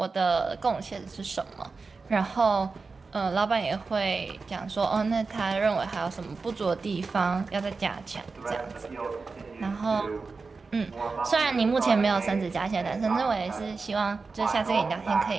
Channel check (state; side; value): quieter; left; 4.3 dB